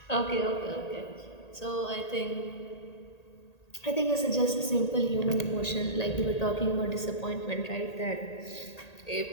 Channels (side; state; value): right; late; 1.8 ms